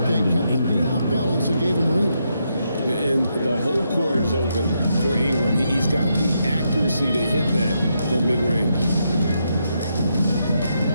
fake kept the beat off balance and gave him room. And the whole court is open for Ingram. He's got the accuracy to hit that from mid-range.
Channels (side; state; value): both; inverted; correlation -0.80